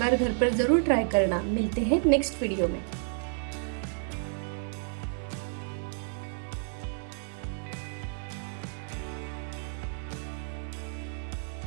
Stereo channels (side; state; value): left; silent; 57 dB below the other